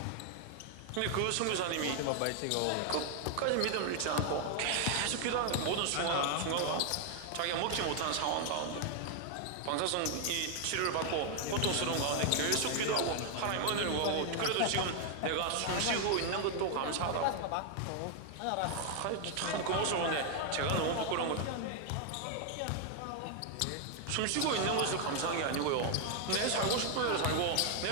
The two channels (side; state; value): both; different; correlation 0.00